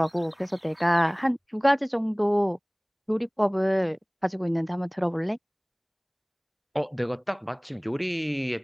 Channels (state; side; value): identical; both; correlation 1.00